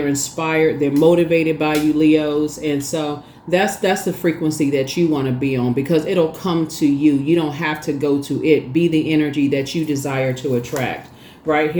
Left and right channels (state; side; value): identical; both; correlation 1.00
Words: inspired. They're motivated by you, Leos. And so that's the frequency that you want to be on, because it'll come to you. You don't have to go to it. Be the energy that you desire to attract. Right